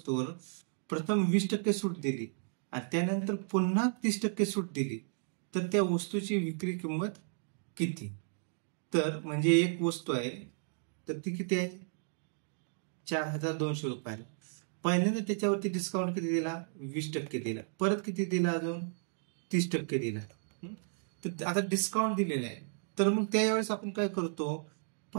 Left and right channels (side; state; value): left; silent; digital silence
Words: प्रथम 20% सूट दिली आणि त्यानंतर पुन्हा 30% सूट दिली, तर त्या वस्तूची विक्री किंमत किती? तर म्हणजे एक वस्तू आहे, तर ती किती आहे? 4,200 रुपयाला. पहिल्यांदा त्याच्यावरती डिस्काउंट किती दिला? 20% दिला. परत किती दिला? अजून 30% दिला. तर आता डिस्काउंट दिलेला आहे, तर मग त्यावेळेस आपण काय करतो?